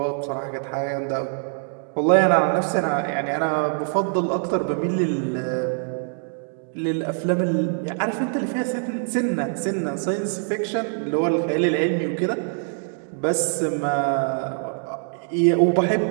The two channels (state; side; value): silent; left; 63 dB below the other